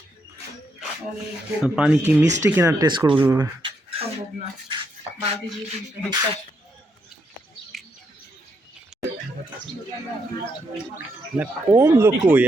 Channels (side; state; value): both; normal; correlation 0.78